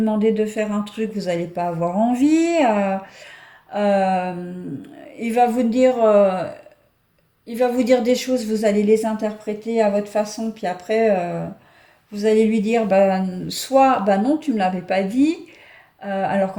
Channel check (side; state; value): both; identical; correlation 1.00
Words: de faire un truc, vous n'allez pas avoir envie. Euh, il va vous dire, euh, il va vous dire des choses, vous allez les interpréter à votre façon, puis après, vous allez lui dire, bah, soit, bah non, tu me l'avais pas dit, alors